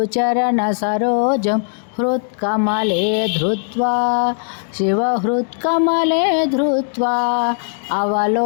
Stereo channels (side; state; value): right; silent; 67 dB below the other